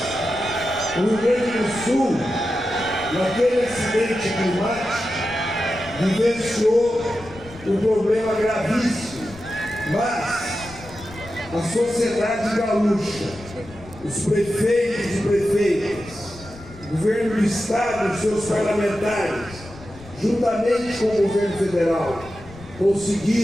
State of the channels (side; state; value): left; noise; rumble, 18 dB below the sound